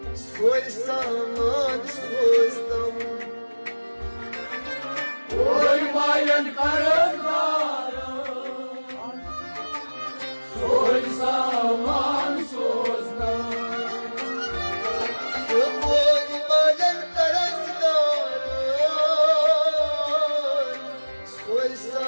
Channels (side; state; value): both; inverted; correlation -1.00